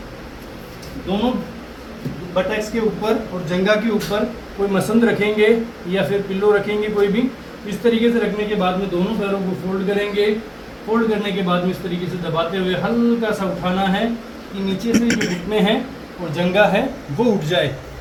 दोनों बटैक्स के ऊपर और जंगा के ऊपर कोई मसंद रखेंगे या फिर पिल्लो रखेंगे कोई भी। इस तरीके से रखने के बाद में दोनों पैरों को फोल्ड करेंगे। फोल्ड करने के बाद में इस तरीके से दबाते हुए हल्का सा उठाना है कि नीचे से जो घुटने हैं और जंगा है वो उठ जाए।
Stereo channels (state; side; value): identical; both; correlation 1.00